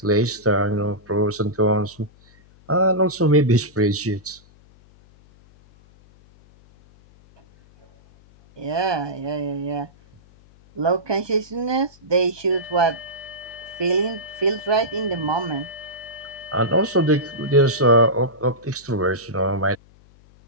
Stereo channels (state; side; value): noise; left; hum, 27 dB below the sound